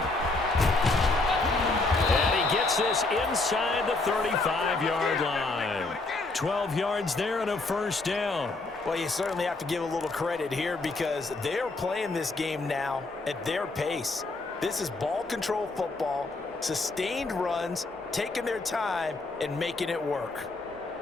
And he gets this inside the 35-yard line. 12 yards there and a 1st down. Well, you certainly have to give a little credit here because they're playing this game now at their pace. This is ball control football, sustained runs, taking their time and making it work.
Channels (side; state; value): right; quieter; 3.3 dB